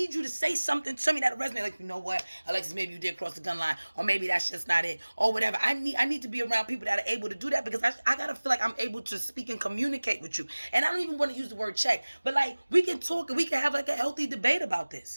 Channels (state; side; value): inverted; both; correlation -1.00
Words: you to say something to me that resonates. Like, you know what, Alexis, maybe you did cross the gun line, or maybe that's just not it, or whatever. I need to be around people that are able to do that, because I gotta feel like I'm able to speak and communicate with you. And I don't even want to use the word check, but like, we can talk and we can have like a healthy debate about